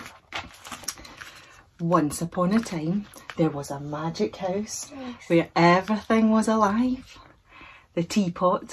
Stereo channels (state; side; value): identical; both; correlation 1.00